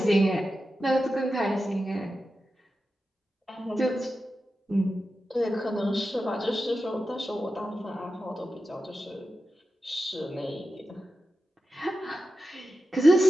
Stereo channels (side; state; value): both; normal; correlation 0.91